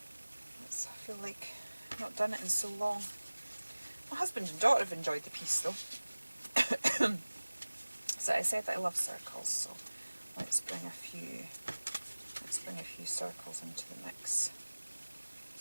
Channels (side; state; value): both; inverted; correlation -1.00